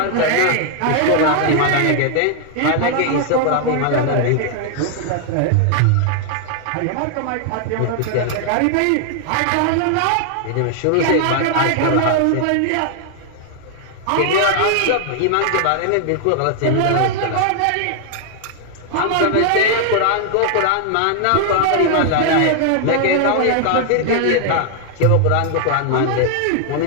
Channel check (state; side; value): different; both; correlation 0.00